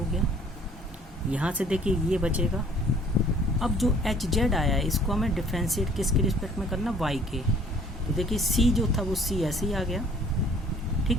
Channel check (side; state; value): both; normal; correlation 0.56